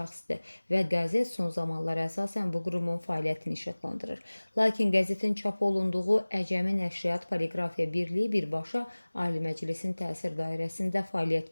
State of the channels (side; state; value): both; inverted; correlation -1.00